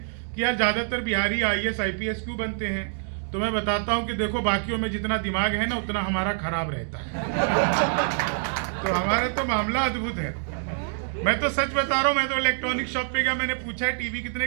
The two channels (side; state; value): left; silent; digital silence